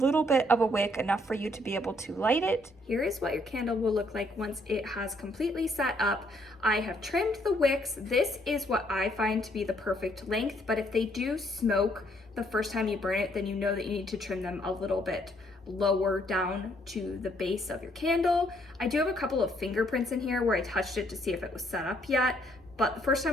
bit of a wick, enough for you to be able to light it. Here is what your candle will look like once it has completely set up. I have trimmed the wicks. This is what I find to be the perfect length, but if they do smoke the first time you burn it, then you know that you need to trim them a little bit lower down to the base of your candle. I do have a couple of fingerprints in here where I touched it to see if it was set up yet, but the first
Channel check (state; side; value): normal; both; correlation 0.68